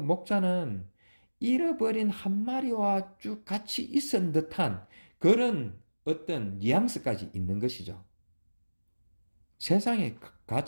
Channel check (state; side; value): inverted; both; correlation -1.00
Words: 잃어버린 한 마리와 쭉 같이 있은 듯한 그런 어떤 뉘앙스까지 있는 것이죠. 세상의